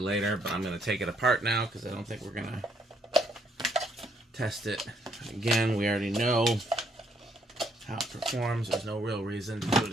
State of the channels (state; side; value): normal; both; correlation 0.70